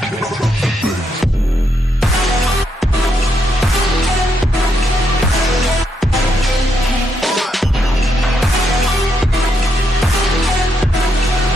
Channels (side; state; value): both; normal; correlation 0.78